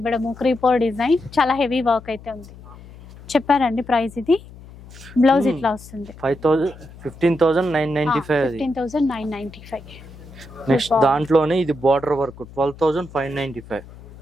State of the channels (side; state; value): left; noise; hum, 19 dB below the sound